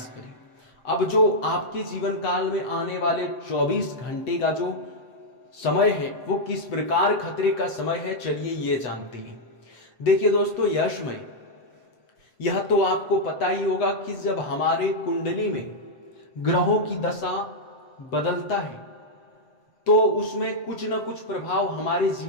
करें। अब जो आपके जीवन काल में आने वाले 24 घंटे का जो समय है वो किस प्रकार खतरे का समय है, चलिए ये जानते हैं। देखिए दोस्तों, यशमय, यह तो आपको पता ही होगा कि जब हमारे कुंडली में ग्रहों की दशा बदलता है तो उसमें कुछ न कुछ प्रभाव हमारे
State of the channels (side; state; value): right; late; 7.7 ms